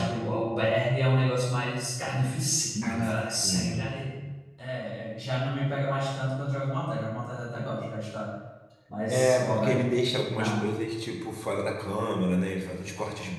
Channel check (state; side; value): identical; both; correlation 1.00